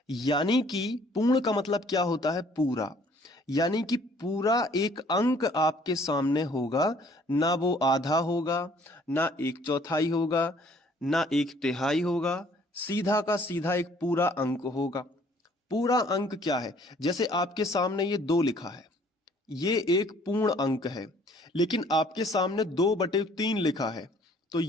यानी कि पूर्ण का मतलब क्या होता है, पूरा। यानी कि पूरा एक अंक आपके सामने होगा, ना वो आधा होगा, ना 1/4 होगा, ना 1/3 होगा, सीधा का सीधा एक पूरा अंक होगा। पूरा अंक क्या है, जैसे आपके सामने ये 2 लिखा है, ये एक पूर्ण अंक है। लेकिन आपके सामने 2/3 लिखा है, तो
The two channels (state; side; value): normal; both; correlation 0.59